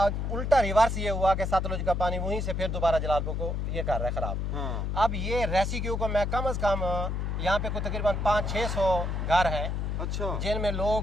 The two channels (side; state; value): left; noise; hum, 1 dB below the sound